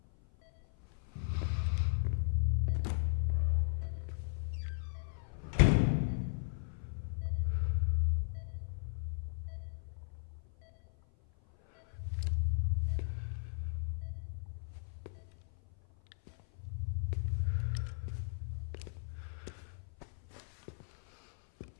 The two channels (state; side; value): silent; right; 54 dB below the other